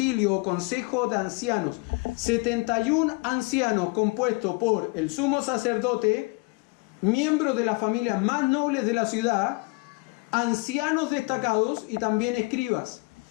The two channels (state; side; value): quieter; right; 27.8 dB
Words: o consejo de ancianos. 71 ancianos compuestos por el sumo sacerdote, miembros de las familias más nobles de la ciudad, ancianos destacados y también escribas.